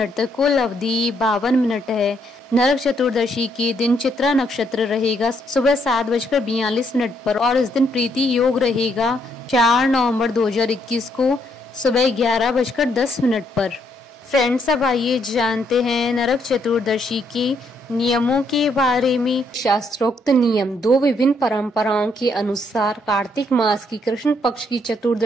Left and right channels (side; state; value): both; normal; correlation 0.73